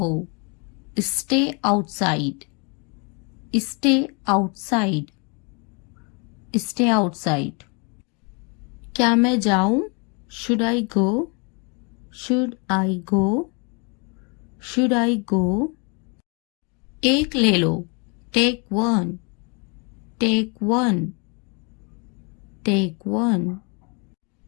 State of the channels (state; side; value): quieter; right; 33.3 dB